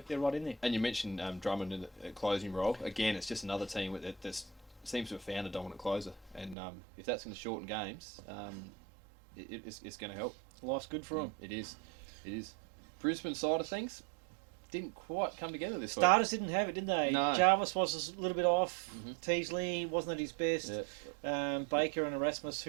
in there. And you mentioned Drummond in the closing role. Again, it's just another team that seems to have found a dominant closer. And if that's going to shorten games, it's going to help. Life's good for them. It is. Brisbane side of things didn't quite come together this week. Starters didn't have it, did they? No. Jarvis was a little bit off. Teasley wasn't at his best. Yeah. Baker and Erasmus,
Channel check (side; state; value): left; drops out; at 6.6 s